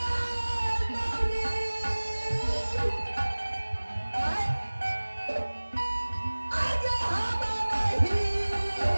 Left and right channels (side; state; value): both; inverted; correlation -1.00